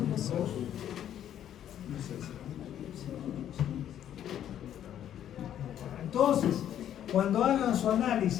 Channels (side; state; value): right; quieter; 10.6 dB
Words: Entonces, cuando hagan su